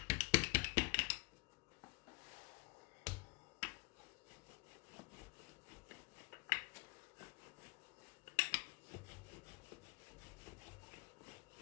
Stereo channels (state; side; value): quieter; right; 28.0 dB